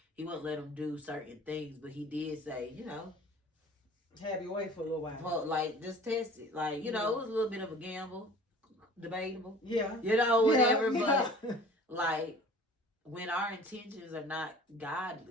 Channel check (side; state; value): both; normal; correlation 0.46